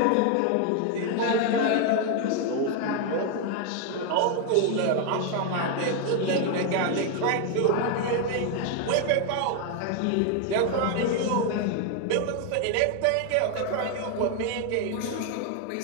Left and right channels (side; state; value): both; different; correlation 0.01